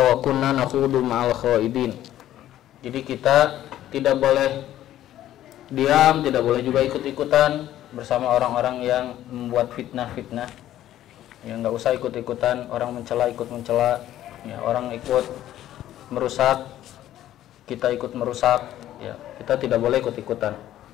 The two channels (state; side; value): quieter; right; 12.8 dB